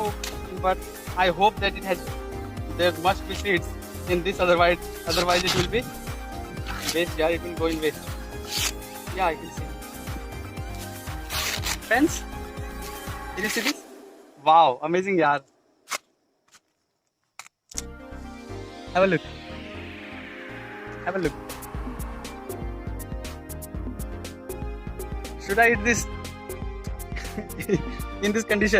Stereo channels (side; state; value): both; identical; correlation 1.00